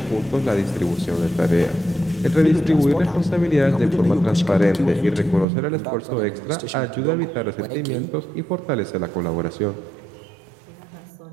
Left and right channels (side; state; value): left; drops out; at 5.5 s